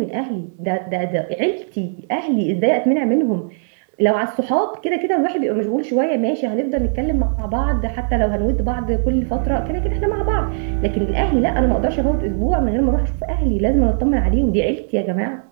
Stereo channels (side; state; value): left; silent; digital silence